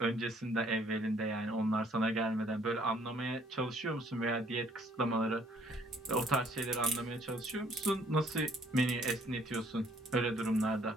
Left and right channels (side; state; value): both; normal; correlation 0.62